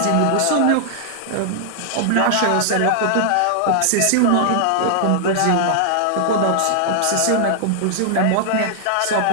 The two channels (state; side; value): different; both; correlation -0.01